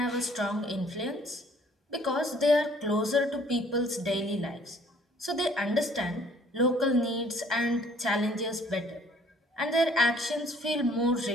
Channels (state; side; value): normal; both; correlation 0.58